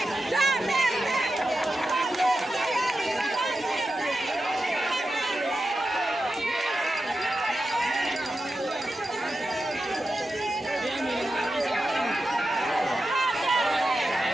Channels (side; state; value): both; normal; correlation 0.91